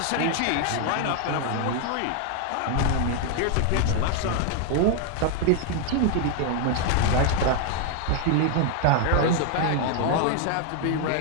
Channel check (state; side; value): different; both; correlation 0.00